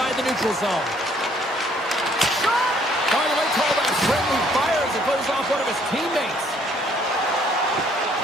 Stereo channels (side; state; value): both; normal; correlation 0.63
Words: the neutral zone. Finally called a friendly fire as it goes off one of his teammates.